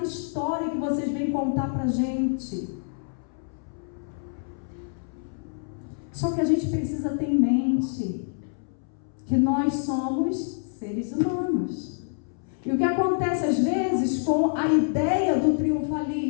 história que vocês vêm contar para a gente. Só que a gente precisa ter em mente que nós somos seres humanos. E o que acontece às vezes com a ideia do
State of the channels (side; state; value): right; silent; 60 dB below the other